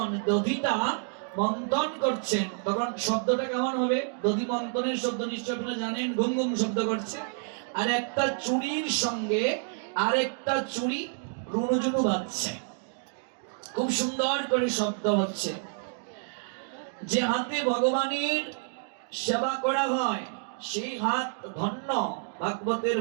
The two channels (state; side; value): silent; left; 59 dB below the other